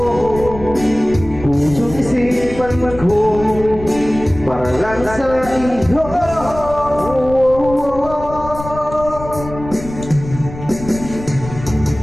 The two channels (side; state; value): left; noise; rumble, 12 dB below the sound